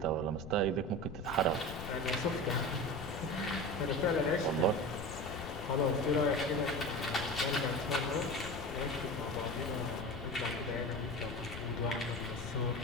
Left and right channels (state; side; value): noise; left; rumble, 10 dB below the sound